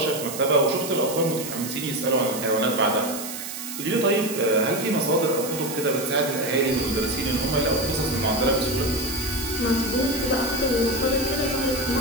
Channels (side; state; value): right; noise; hiss, 8 dB below the sound